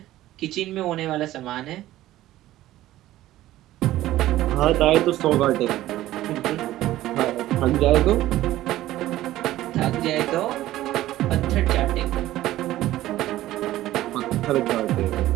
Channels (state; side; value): quieter; left; 15.0 dB